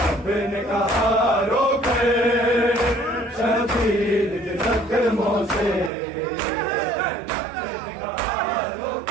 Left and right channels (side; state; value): left; drops out; at 5.9 s